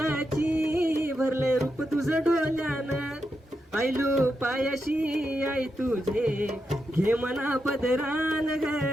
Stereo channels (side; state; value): both; normal; correlation 0.86